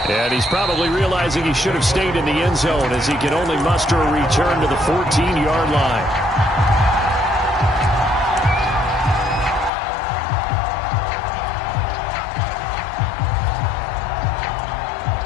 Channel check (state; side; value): drops out; right; at 9.7 s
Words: And he's probably realizing he should have stayed in the end zone, as he can only muster a return to the 14-yard line.